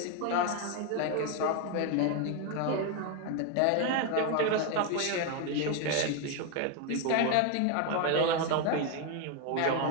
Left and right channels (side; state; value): both; different; correlation 0.01